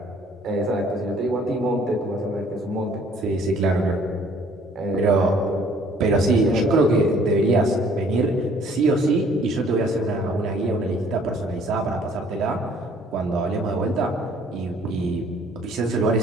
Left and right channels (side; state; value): both; normal; correlation 0.58